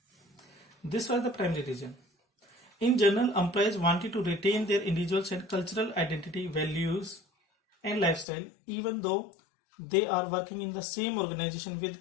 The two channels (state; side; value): drops out; right; at 8.2 s